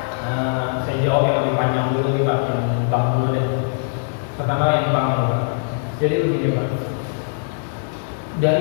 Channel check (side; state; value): right; silent; digital silence